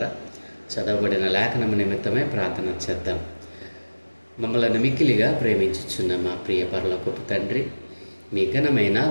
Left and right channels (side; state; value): both; inverted; correlation -1.00